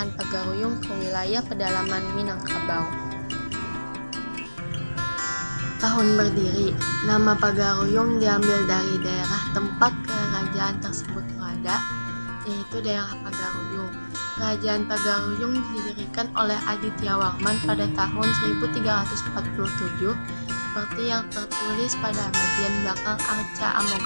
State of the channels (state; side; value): inverted; both; correlation -1.00